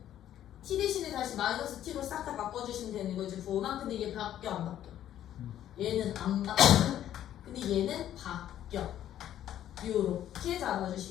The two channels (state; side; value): quieter; right; 11.5 dB